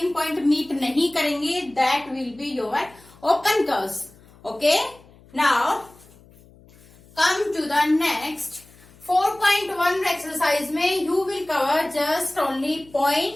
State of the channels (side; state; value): left; noise; hum, 26 dB below the sound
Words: point meet नहीं करेंगे that will be your open curves. Okay, now come to the next 4.1 exercise में you will cover just only